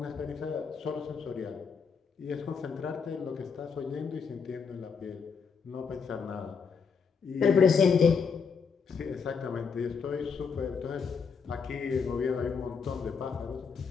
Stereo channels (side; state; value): right; quieter; 5.8 dB